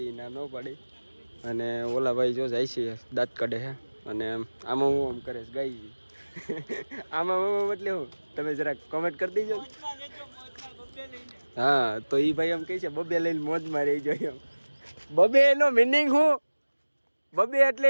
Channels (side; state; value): both; inverted; correlation -1.00